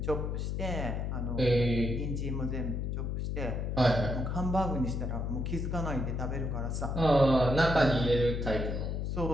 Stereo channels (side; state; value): left; noise; hum, 1 dB below the sound